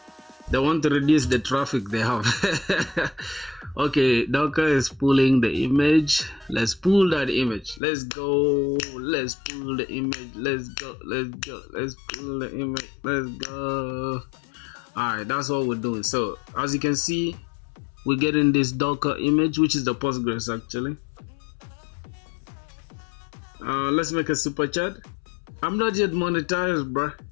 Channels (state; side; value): drops out; right; at 7.8 s